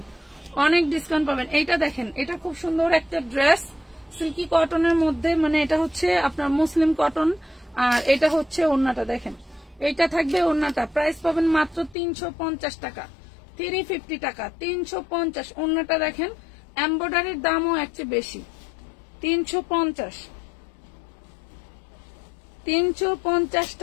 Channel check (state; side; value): drops out; right; at 12.0 s